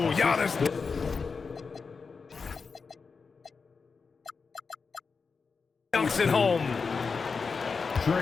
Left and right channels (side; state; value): right; quieter; 5.0 dB